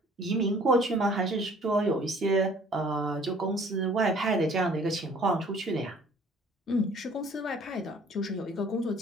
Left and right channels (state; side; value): normal; both; correlation 0.54